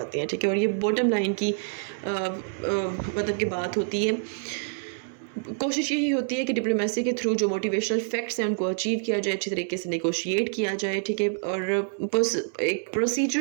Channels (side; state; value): left; silent; 60 dB below the other